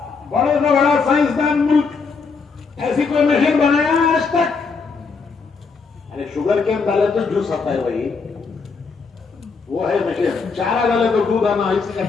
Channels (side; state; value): right; quieter; 4.9 dB